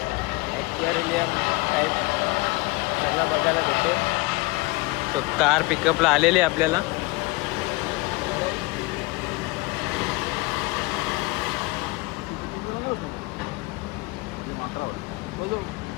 ॲक्वेरियम टाईप सगळं बघायला भेटेल. तो कार पिकअपला आलेली आहे आपल्याला.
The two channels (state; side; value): quieter; right; 24.2 dB